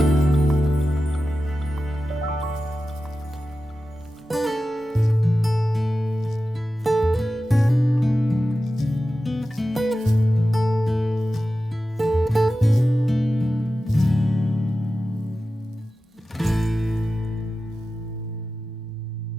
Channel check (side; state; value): both; normal; correlation 0.93